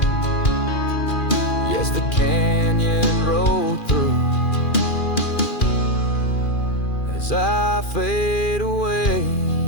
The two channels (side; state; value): right; late; 2.4 ms